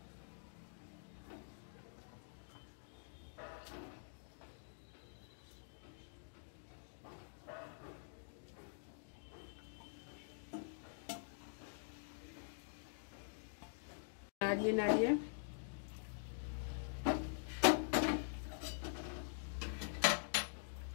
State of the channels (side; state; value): right; silent; digital silence